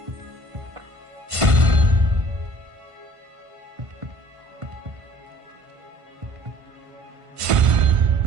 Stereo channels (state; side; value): late; left; 1.5 ms